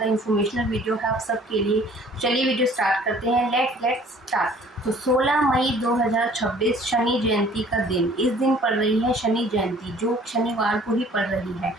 इन्फॉर्मेशनल वीडियो है आप सबके लिए। चलिए वीडियो स्टार्ट करते हैं। Let's start. तो 16 मई 2026 शनि जयंती का दिन, इस दिन पड़ रही है शनि जयंती, जो शनिवार को ही पड़ रही है।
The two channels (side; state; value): both; normal; correlation 0.54